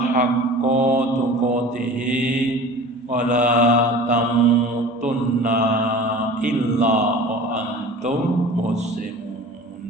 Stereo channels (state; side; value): normal; both; correlation 0.40